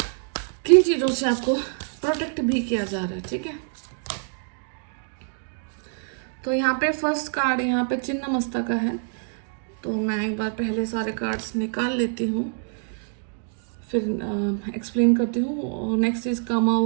किन चीज़ों से आपको प्रोटेक्ट भी किया जा रहा है, ठीक है। तो यहाँ पे फर्स्ट कार्ड यहाँ पे चिन्ह मस्ता का है, तो मैं एक बार पहले सारे कार्ड्स निकाल लेती हूँ फिर एक्सप्लेन करती हूँ। नेक्स्ट इज कामा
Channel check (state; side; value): silent; left; 61 dB below the other